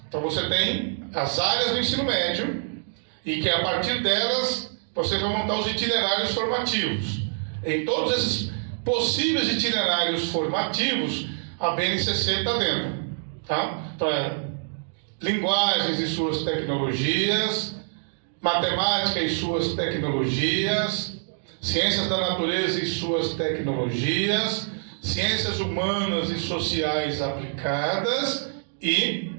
Então você tem as áreas do ensino médio, e que a partir delas você vai montar os itinerários formativos. Em todos esses possíveis itinerários formativos, a BNCC está dentro. Tá? Então linguagens e suas tecnologias, matemática e suas tecnologias, ciências da natureza e suas tecnologias, ciências humanas e sociais aplicadas e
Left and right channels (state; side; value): silent; left; digital silence